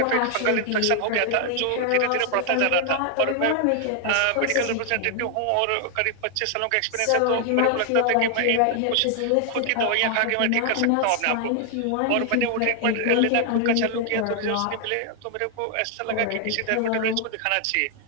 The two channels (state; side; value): different; both; correlation 0.00